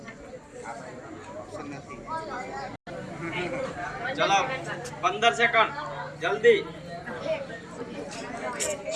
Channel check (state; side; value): identical; both; correlation 1.00